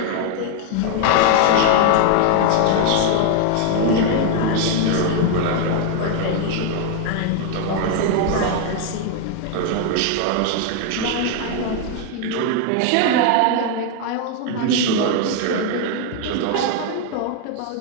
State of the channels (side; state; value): both; different; correlation 0.00